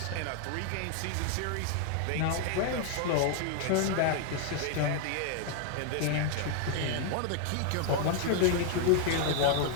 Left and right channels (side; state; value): both; different; correlation 0.00